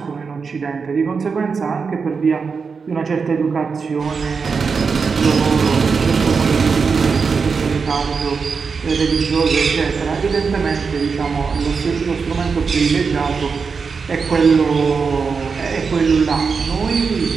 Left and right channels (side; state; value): left; quieter; 5.3 dB